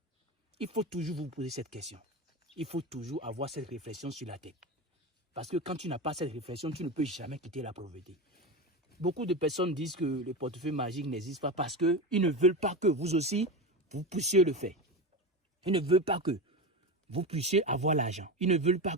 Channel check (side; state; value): both; normal; correlation 0.21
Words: Il faut toujours vous poser cette question. Il faut toujours avoir cette réflexion sur la tête. Parce que quand tu n'as pas cette réflexion, tu ne peux jamais quitter la pauvreté. Beaucoup de personnes disent que le portefeuille magique n'existe pas parce qu'ils ne veulent pas que vous aussi, vous puissiez le faire. Ils ne veulent pas que vous puissiez avoir l'argent. Ils ne veulent pas